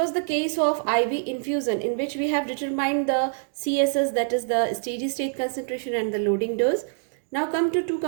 the case of IV infusion in which we have determined the CSS, that is the steady state concentration, and the loading dose. Now come to two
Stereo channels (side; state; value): left; silent; digital silence